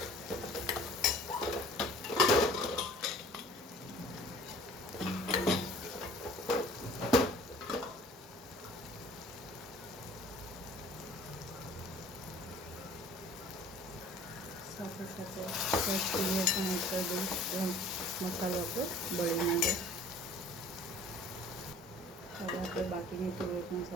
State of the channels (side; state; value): both; normal; correlation 0.49